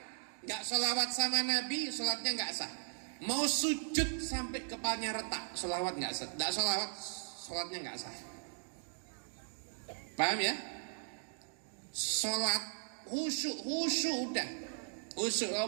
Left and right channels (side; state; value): left; silent; digital silence